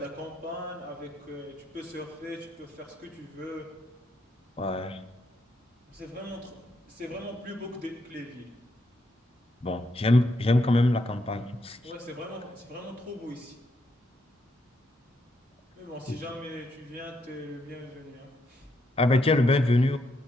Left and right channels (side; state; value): both; normal; correlation 0.78